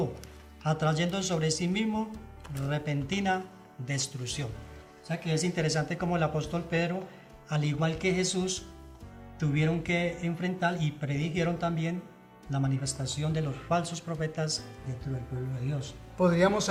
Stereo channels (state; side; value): identical; both; correlation 1.00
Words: atrayendo sobre sí mismo repentina destrucción. O sea que es interesante como el apóstol Pedro, al igual que Jesús, tuvieron que enfrentar y predijeron también la manifestación de los falsos profetas dentro del pueblo de Dios. Podríamos